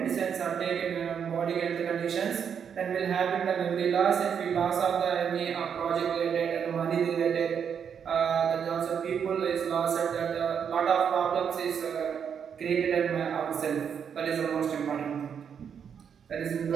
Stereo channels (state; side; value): quieter; left; 7.5 dB